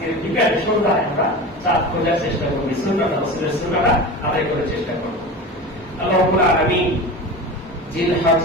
বিকালে সন্ধ্যায় আমরা চাঁদ খোঁজার চেষ্টা করবো, সুন্নাত রাসূলের সুন্নাহটা আদায় করার চেষ্টা করবো। আল্লাহ রাব্বুল আলামিন জিলহজ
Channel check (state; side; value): normal; both; correlation 0.29